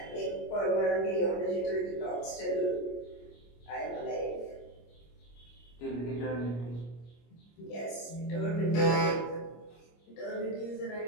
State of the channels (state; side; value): late; right; 25 ms